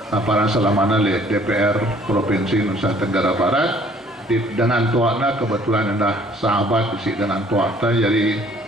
apa selamanya di DPR provinsi Nusa Tenggara Barat. Dengan tuakna kebetulan dah sahabat isi dengan tuakna jadi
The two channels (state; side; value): normal; both; correlation 0.58